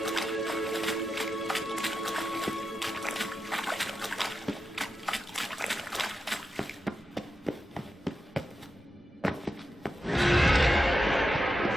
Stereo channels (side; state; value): both; normal; correlation 0.89